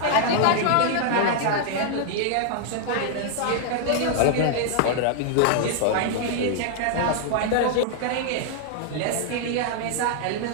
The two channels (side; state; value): both; different; correlation 0.00